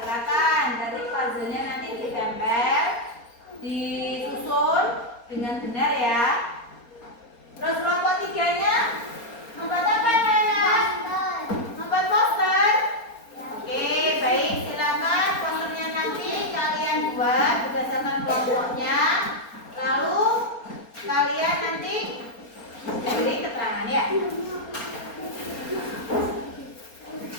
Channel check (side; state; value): right; late; 4.3 ms